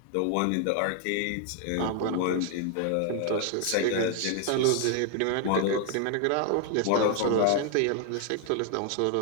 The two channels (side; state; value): both; different; correlation 0.00